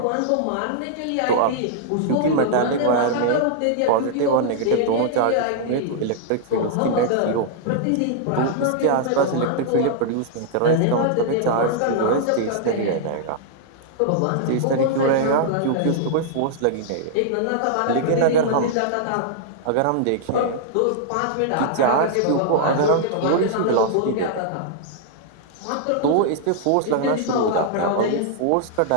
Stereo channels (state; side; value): different; both; correlation -0.01